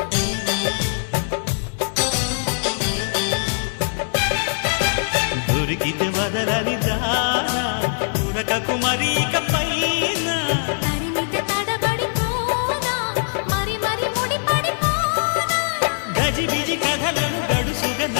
దొరికితే వదలని దానా ఉరకకు మరీక పైన తరిమితే తడబడిపోనా మరి మరి ముడిపడిపోనా గజిబిజి కథలను గడుసుగా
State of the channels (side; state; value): right; silent; digital silence